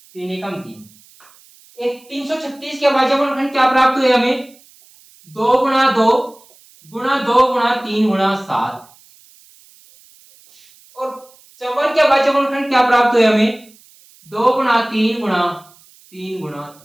3 एकम 3। एक 336 के अभाज्य गुणनखंड क्या प्राप्त हुए हमें? 2 गुणा 2 गुणा 2 गुणा 3 गुणा 7, और 54 के अभाज्य गुणनखंड क्या प्राप्त हुए हमें? 2 गुणा 3 गुणा 3 गुणा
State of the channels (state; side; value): noise; right; hiss, 27 dB below the sound